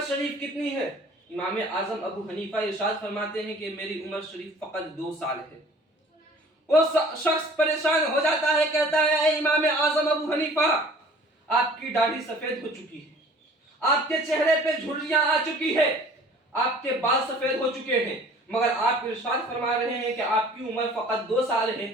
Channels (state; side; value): normal; both; correlation 0.50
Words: شریف کتنی ہے؟ امام اعظم ابو حنیفہ ارشاد فرماتے ہیں کہ میری عمر شریف فقط 2 سال ہے۔ وہ شخص پریشان ہو جاتا ہے، کہتا ہے، اے امام اعظم ابو حنیفہ، آپ کی داڑھی سفید ہو چکی ہے، آپ کے چہرے پہ جھریاں آ چکی ہے، آپ کے بال سفید ہو چکے ہیں، مگر آپ ارشاد فرما رہے ہیں کہ آپ کی عمر فقط 2 سال ہے،